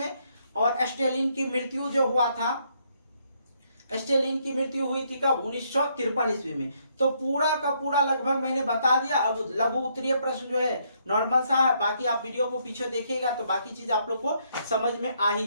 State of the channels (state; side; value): inverted; both; correlation -0.72